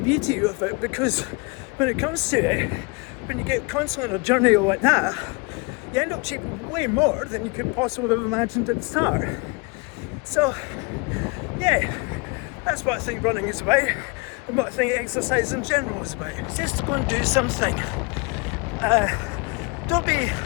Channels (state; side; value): quieter; right; 29.2 dB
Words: beauty of it, because when it comes to it, when you get constantly on a journey like that, you end up achieving way more than you could possibly have imagined at the start. So yeah, that's what I think running is about, and what I think exercise in general is about. It's just to go and do something. Don't